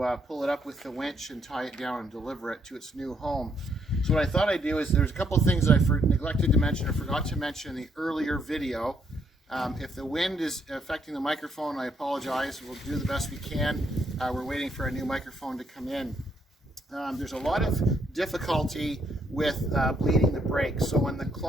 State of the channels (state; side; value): normal; both; correlation 0.73